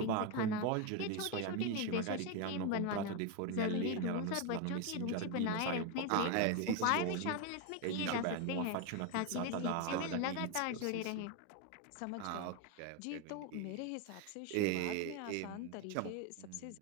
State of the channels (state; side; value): different; both; correlation 0.02